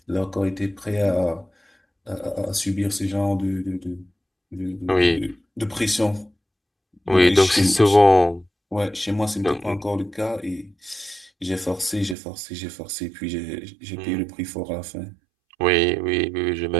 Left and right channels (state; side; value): drops out; left; at 12.2 s